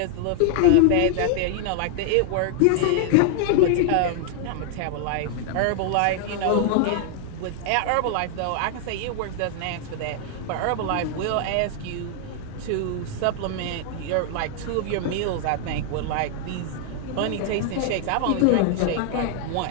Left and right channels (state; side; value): different; both; correlation 0.00